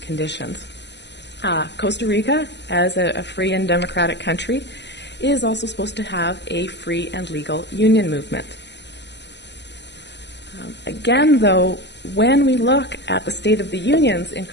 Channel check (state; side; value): late; right; 0.50 ms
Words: Costa Rica, as a free and democratic country, is also supposed to have a free and legal union movement. Again, though, when we look at the state of the unions in